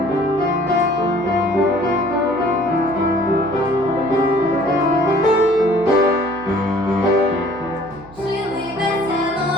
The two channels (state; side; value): noise; right; hum, 21 dB below the sound